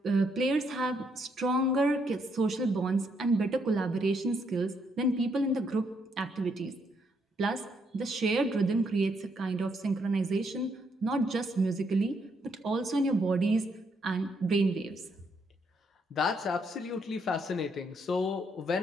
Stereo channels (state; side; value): normal; both; correlation 0.74